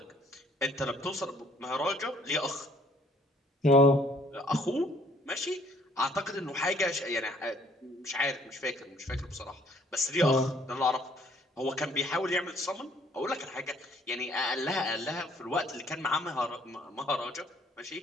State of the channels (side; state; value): both; normal; correlation 0.61